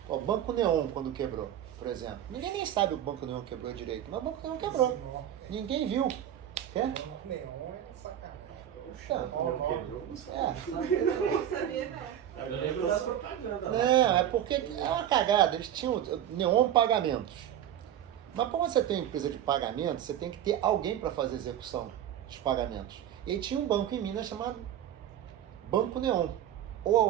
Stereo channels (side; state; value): left; quieter; 10.8 dB